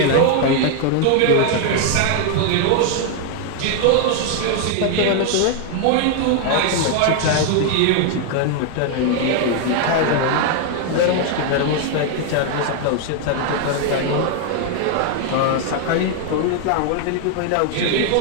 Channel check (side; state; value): both; different; correlation 0.00